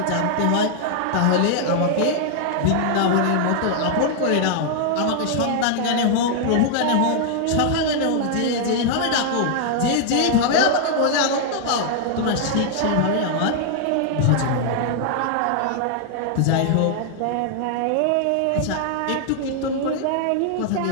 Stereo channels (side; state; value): both; different; correlation 0.00